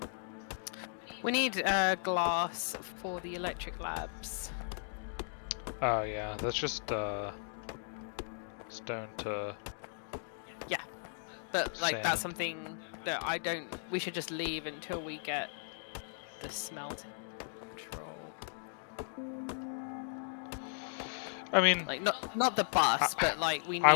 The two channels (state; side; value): silent; right; digital silence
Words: we need glass for the electric labs. Oh yeah, that's just stone to But like that's sand. something that we should just leave until we get the smelting control. I mean, Like not the bus, but like we